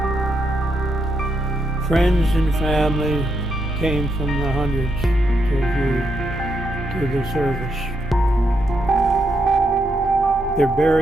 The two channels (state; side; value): normal; both; correlation 0.80